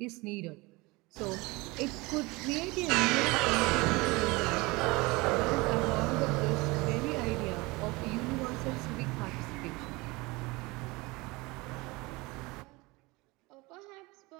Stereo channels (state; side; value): quieter; left; 23.7 dB